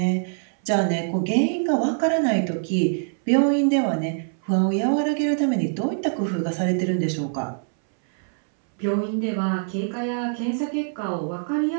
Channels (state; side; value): silent; left; 62 dB below the other